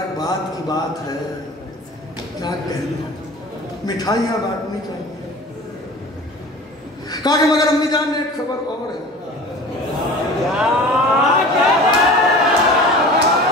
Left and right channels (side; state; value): both; normal; correlation 0.39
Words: بات کی بات ہے، کیا کہنے، مٹھائیاں بانٹنی چاہیے۔ کہا کہ مگر امی جان ایک خبر اور ہے۔